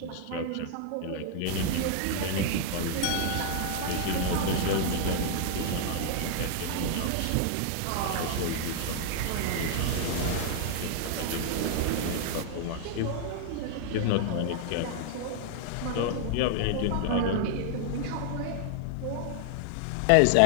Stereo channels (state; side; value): different; both; correlation 0.00